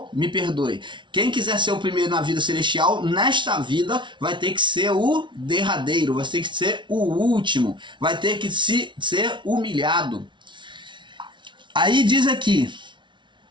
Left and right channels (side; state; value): left; late; 0.24 ms